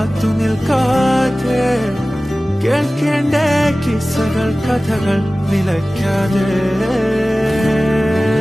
നിൽക്കാതെ കേൾക്കേണ്ട കിസ്സകൾ കഥകൾ നിലയ്ക്കാതെ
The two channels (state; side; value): normal; both; correlation 0.97